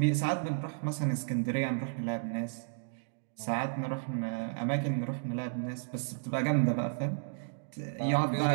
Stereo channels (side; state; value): left; silent; digital silence